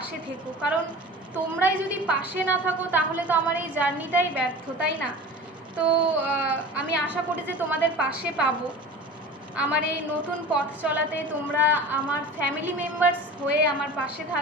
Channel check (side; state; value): both; normal; correlation 0.37